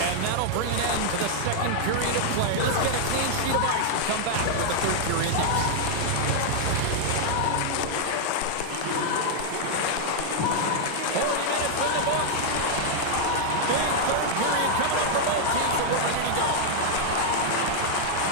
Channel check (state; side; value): different; both; correlation -0.01